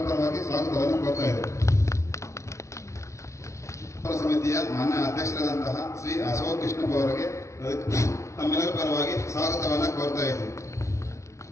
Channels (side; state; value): right; late; 0.14 ms